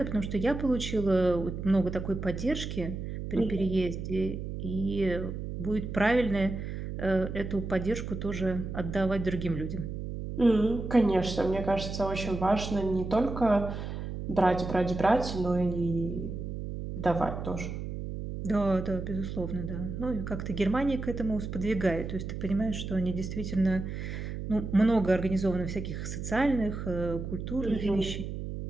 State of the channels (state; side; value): noise; right; hum, 6 dB below the sound